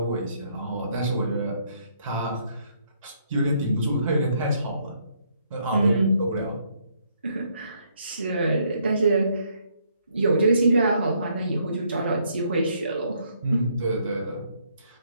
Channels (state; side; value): inverted; both; correlation -0.70